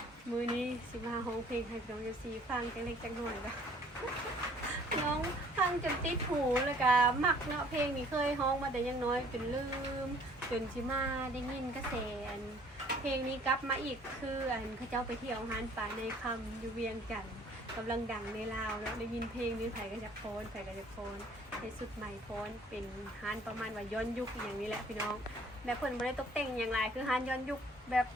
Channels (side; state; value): both; normal; correlation 0.56